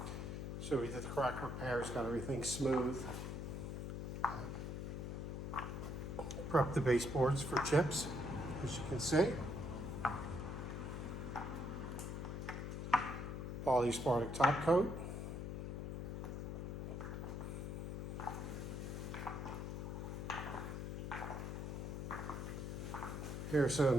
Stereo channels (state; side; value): noise; left; hum, 4 dB below the sound